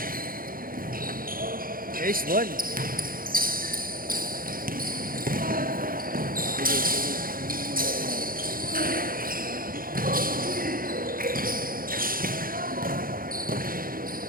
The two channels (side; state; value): left; late; 0.41 ms